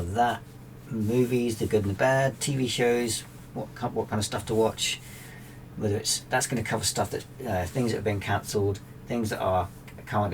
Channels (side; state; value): both; identical; correlation 1.00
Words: that. Movies, the good and the bad. TV shows, what kind of stuff to watch. That's going to cover stuff that things that have been cancelled, things that are